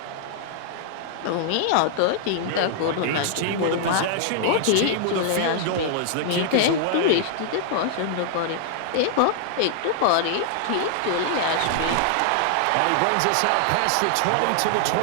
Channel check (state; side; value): different; both; correlation -0.01